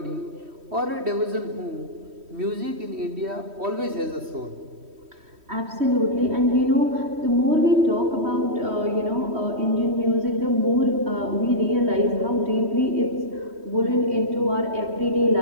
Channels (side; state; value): left; late; 3.1 ms